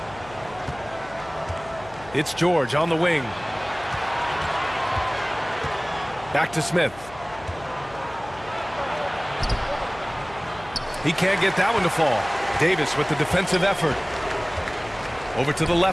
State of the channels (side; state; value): left; noise; hum, 20 dB below the sound